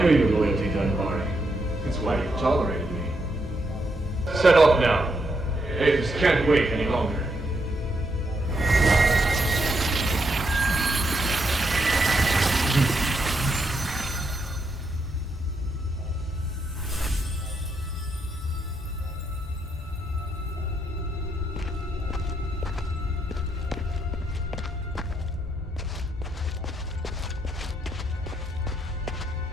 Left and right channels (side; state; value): both; normal; correlation 0.79